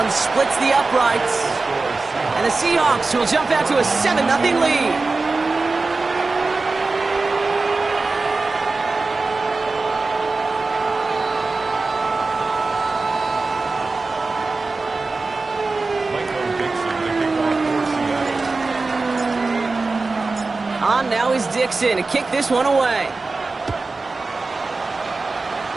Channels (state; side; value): quieter; left; 3.7 dB